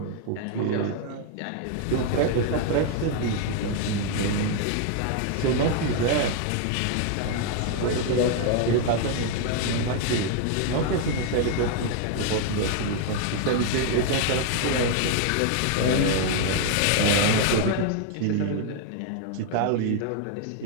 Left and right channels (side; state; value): both; different; correlation 0.00